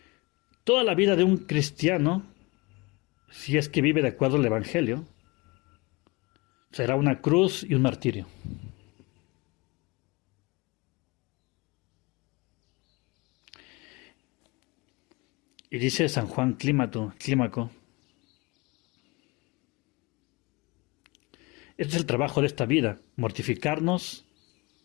toda la vida de un cristiano, si es que vive de acuerdo al Evangelio, será una cruz y un martirio. Y dice San Juan Clímaco: este es el trabajo de esta vida, mortificarnos,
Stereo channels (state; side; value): quieter; right; 25.5 dB